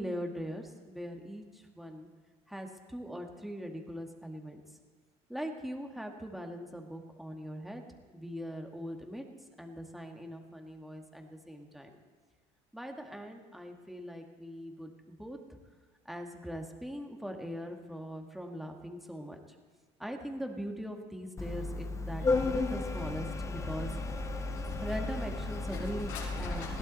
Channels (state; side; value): normal; both; correlation 0.83